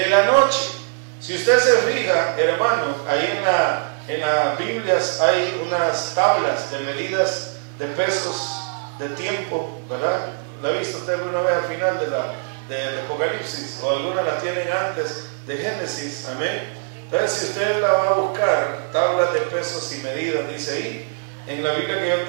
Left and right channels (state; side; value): silent; left; digital silence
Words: la noche. Si usted se fija, hermano, ahí en las Biblias hay unas tablas de medidas de pesos de tiempo, ¿verdad? ¿La ha visto usted alguna vez al final de Apocalipsis? O algunas las tienen antes de Génesis, amén. Entonces, si usted la va a buscar, tablas de pesos y medidas, dice ahí, en la Biblia que yo